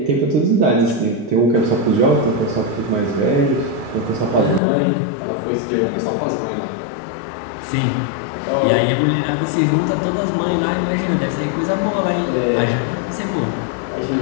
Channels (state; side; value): drops out; right; at 4.6 s